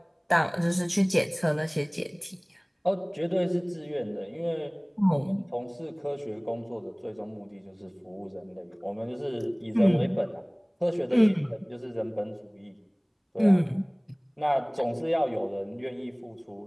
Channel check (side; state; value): both; identical; correlation 1.00